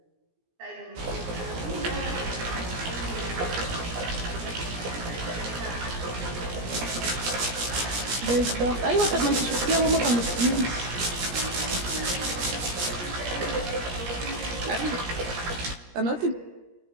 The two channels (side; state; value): left; late; 17 ms